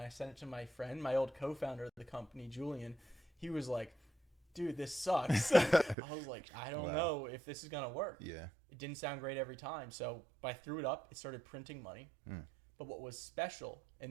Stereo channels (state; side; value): drops out; left; at 6.0 s